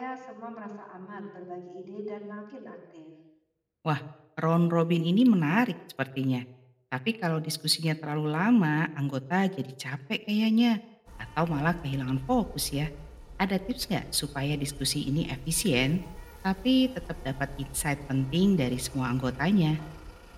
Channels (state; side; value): identical; both; correlation 1.00